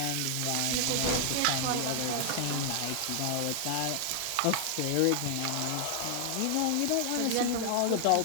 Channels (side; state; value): both; different; correlation 0.00